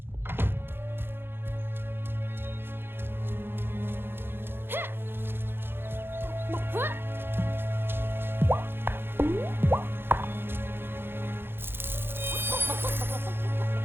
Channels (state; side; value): late; left; 0.10 ms